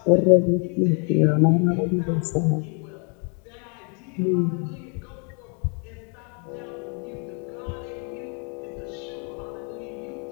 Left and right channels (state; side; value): quieter; right; 38.2 dB